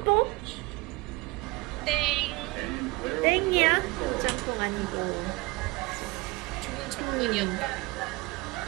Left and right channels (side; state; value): left; quieter; 23.3 dB